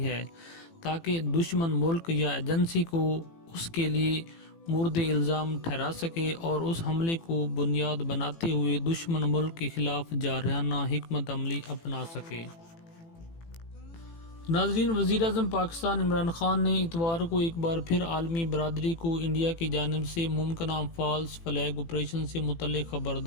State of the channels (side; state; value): right; late; 18 ms